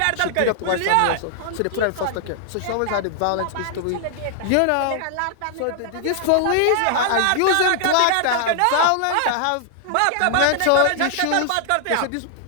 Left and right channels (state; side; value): different; both; correlation 0.00